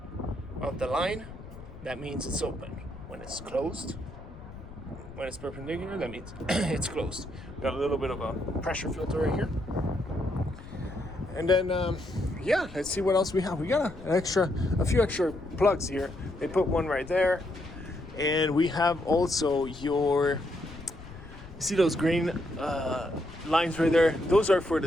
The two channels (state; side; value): noise; left; rumble, 15 dB below the sound